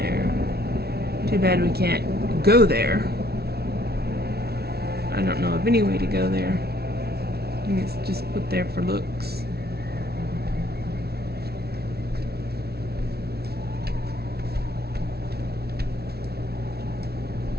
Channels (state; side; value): late; left; 0.46 ms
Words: Too bad we can't go there. I don't know of any way to go there. I think it's just put there for looks.